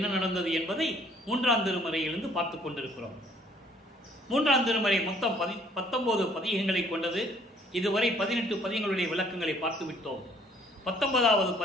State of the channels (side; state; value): both; normal; correlation 0.60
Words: நடந்தது என்பதை 3ஆம் திருமுறையிலிருந்து பார்த்து கொண்டிருக்கிறோம். 3ஆம் திருமுறை மொத்தம் 19 பதிகங்களை கொண்டது. இதுவரை 18 பதிகங்களுடைய விளக்கங்களை பார்த்துவிட்டோம். 19வது